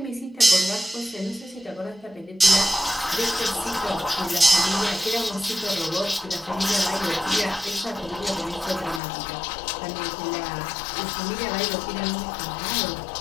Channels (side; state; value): right; drops out; at 9.0 s